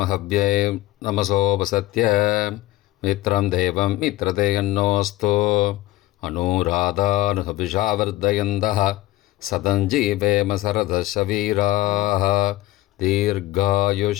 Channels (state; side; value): quieter; right; 17.1 dB